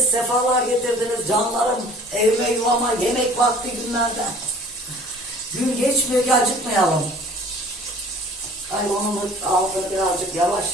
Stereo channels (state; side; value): normal; both; correlation 0.49